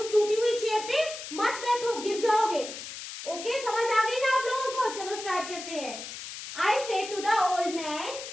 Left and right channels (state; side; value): noise; left; hiss, 10 dB below the sound